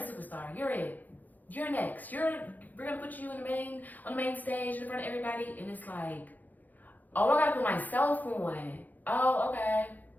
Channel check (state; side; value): late; right; 0.083 ms